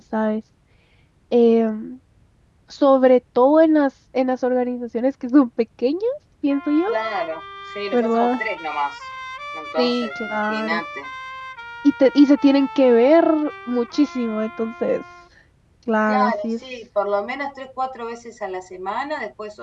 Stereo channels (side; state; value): both; identical; correlation 1.00